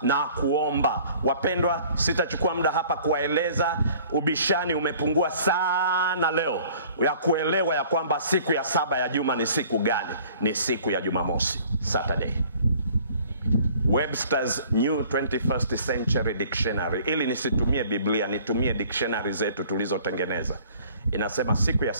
na kuomba. Wapendwa, sitachukua muda hapa kuwaeleza. Ubishani umepungua sana leo ya kuelewa ya kwamba siku ya saba ya juma ni siku gani. Ni siku ya Jumamosi, Saturday. Webster's New 21st Century Dictionary, ili nisitumie Biblia, nitumie dictionary zetu tulizotengeneza, inasema siku ya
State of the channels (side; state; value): both; inverted; correlation -0.53